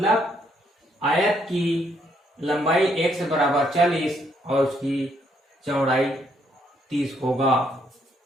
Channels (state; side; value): normal; both; correlation 0.72